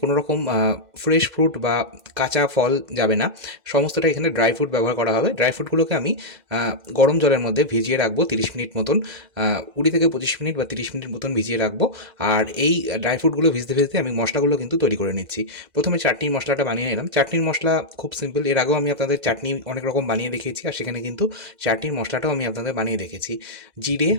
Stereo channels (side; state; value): left; late; 2.0 ms